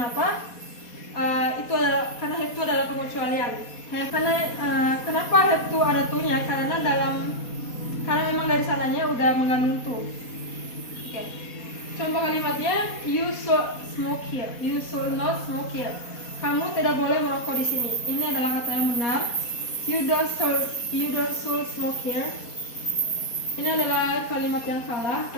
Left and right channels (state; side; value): late; right; 4.2 ms